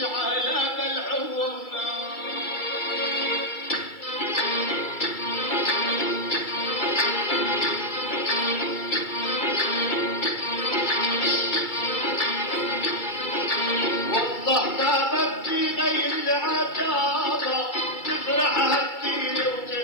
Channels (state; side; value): late; right; 2.3 ms